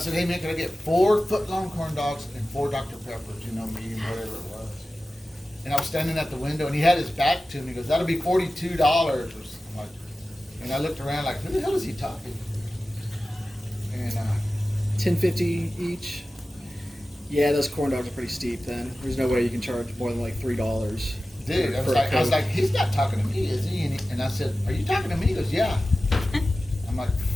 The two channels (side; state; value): both; normal; correlation 0.95